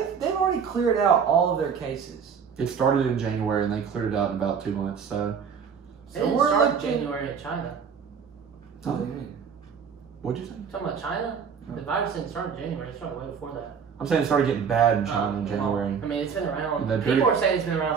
They've already cleared out all of their cases. It started in January, and they cleared it out in about 2 months. So, it didn't we're start looking- January in China. What do you mean? what'd you say? Talking about China, the virus didn't start in January. It started way before that. I'm saying it started getting bad in China in Well, January. I mean, it's been around. Then People pretty- are saying it's been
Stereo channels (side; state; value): left; quieter; 6.7 dB